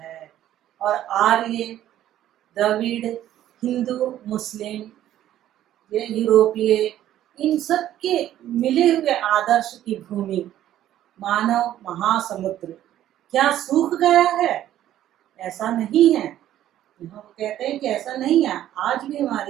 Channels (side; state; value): left; quieter; 12.4 dB